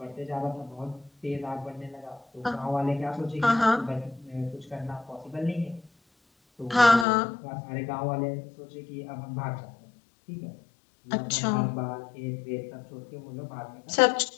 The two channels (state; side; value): drops out; right; at 7.1 s